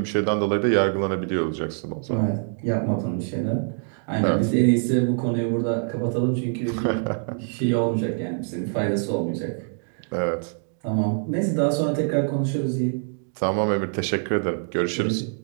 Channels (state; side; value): silent; left; digital silence